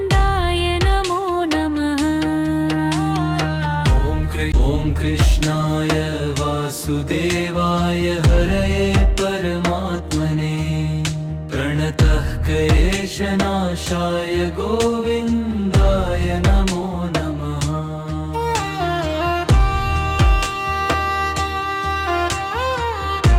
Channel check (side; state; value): both; identical; correlation 1.00